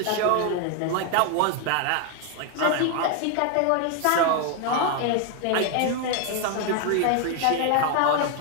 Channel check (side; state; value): both; different; correlation 0.01